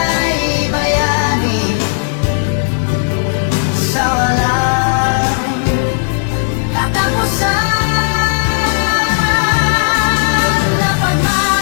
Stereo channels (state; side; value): silent; right; digital silence